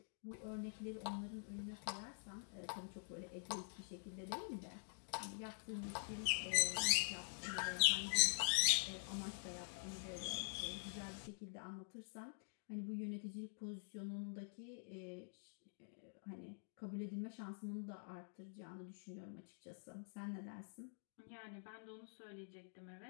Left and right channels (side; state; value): right; silent; digital silence